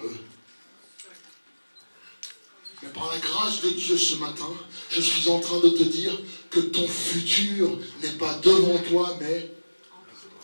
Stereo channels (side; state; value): both; inverted; correlation -1.00